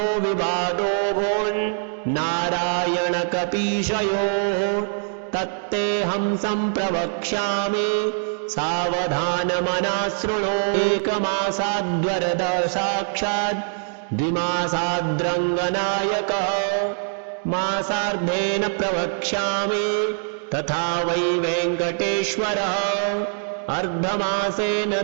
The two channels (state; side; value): silent; left; 60 dB below the other